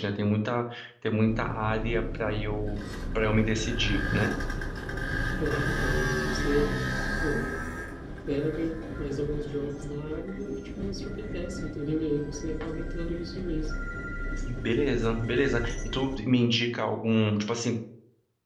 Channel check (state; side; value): identical; both; correlation 1.00